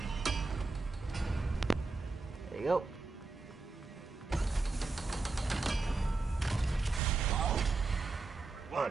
There you go.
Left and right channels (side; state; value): left; quieter; 3.7 dB